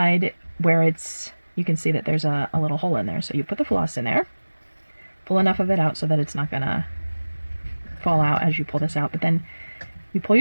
where you can see that there's a little hole in there. So you put the floss in there, pull enough of it out so that it's not gonna fall out as you pull this out, but then you pull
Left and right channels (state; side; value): inverted; both; correlation -1.00